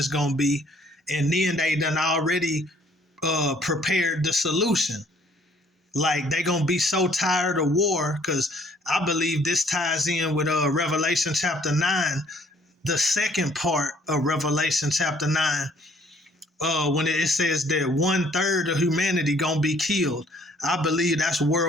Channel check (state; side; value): normal; both; correlation 0.61